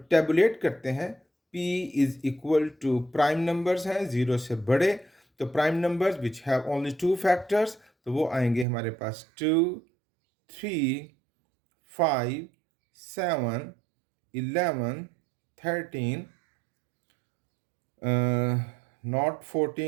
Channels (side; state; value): left; drops out; at 8.7 s